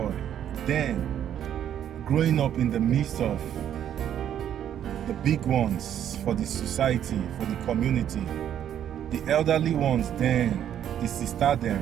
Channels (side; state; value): left; quieter; 10.1 dB